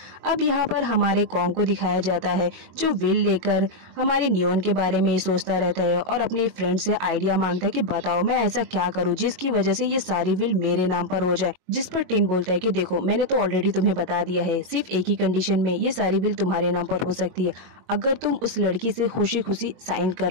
अब यहाँ पर हमारे कॉन्ग को दिखाया जाता है जो विल लेकर हमारे नियोन के बारे में ही सोचता रहता है और अपने फ्रेंड से आइडिया मांगता है कि बताओ मैं ऐसा क्या करूँ जिसकी वजह से ये सारी विल मेरे नाम पर हो जाए। जिस पर टिन बोलता है कि देखो मैंने तो ऑलरेडी तुम्हें बता दिया है, सिर्फ एक ही कंडीशन में ये सारी विल तुम्हारे नाम पर हो सकती है, अगर तुम उस लड़की से खुशी खुशी साइन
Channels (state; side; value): late; left; 22 ms